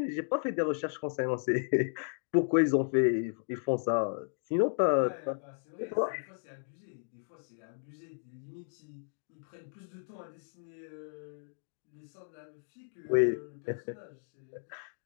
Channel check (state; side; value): silent; right; digital silence